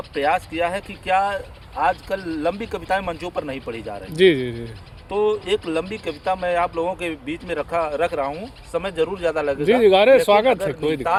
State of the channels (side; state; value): both; identical; correlation 1.00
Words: प्रयास किया है कि क्या आजकल लंबी कविताएं मंचों पर नहीं पढ़ी जा रही। जी जी जी तो एक लंबी कविता मैं आप लोगों के बीच में रख रहा हूँ। समय जरूर ज़्यादा लगेगा। जी जी अरे लेकिन स्वागत है, अगर कोई